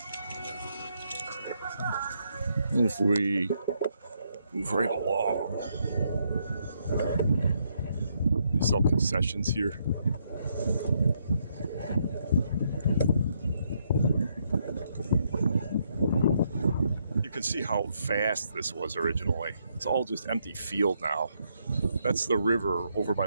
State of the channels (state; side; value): inverted; both; correlation -0.75